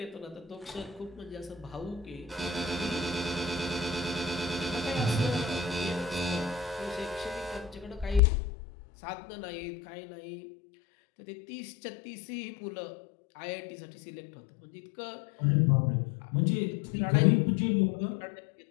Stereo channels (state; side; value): drops out; right; at 8.2 s